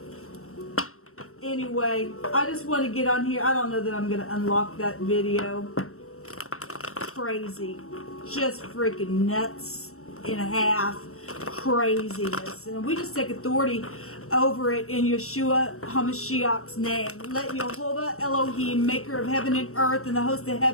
Anyway, I just want to get on here. I don't know that I'm going to unlock that video. Crazy. Just freaking nuts and a half craziness. And we just take authority over it in Yeshua HaMashiach's name. Let Jehovah Elohim, maker of heaven and earth and the host of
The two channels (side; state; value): right; late; 0.63 ms